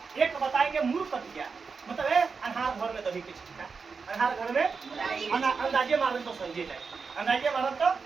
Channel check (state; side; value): quieter; left; 5.1 dB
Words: एक बताएंगे मूर्खटिया मतलब है अनहार घर में दही के छिटका, अनहार घर में अंदाजे मारे तो समझे जाए, अंदाजे मारे तो